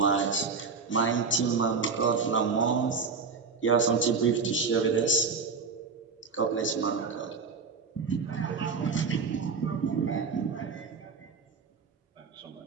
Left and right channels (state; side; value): quieter; left; 4.9 dB